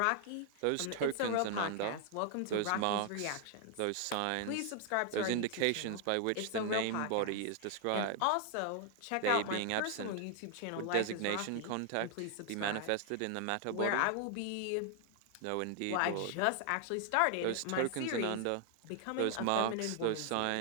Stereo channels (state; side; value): different; both; correlation 0.00